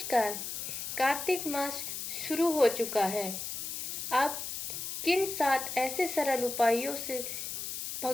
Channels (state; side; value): noise; left; hiss, 5 dB below the sound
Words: कार्तिक मास शुरू हो चुका है। आप किन 7 ऐसे सरल उपायों से